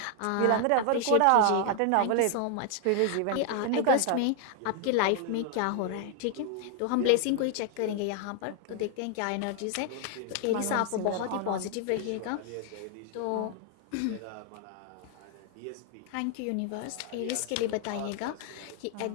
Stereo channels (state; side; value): different; both; correlation 0.00